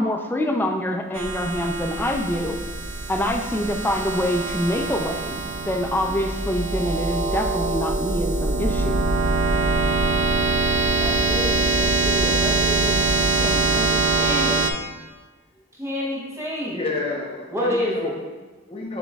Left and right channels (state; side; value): normal; both; correlation 0.39